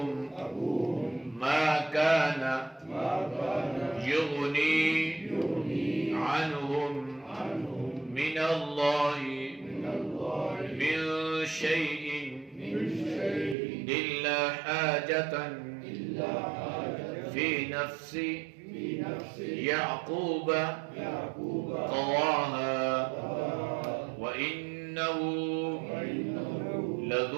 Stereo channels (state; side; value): drops out; left; at 13.6 s